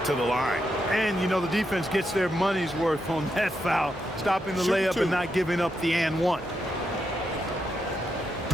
to the line. And, you know, the defense gets their money's worth on that foul, stopping the layup and not giving up the and one.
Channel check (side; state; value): both; normal; correlation 0.83